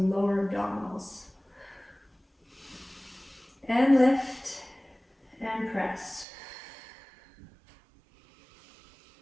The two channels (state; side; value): drops out; left; at 6.2 s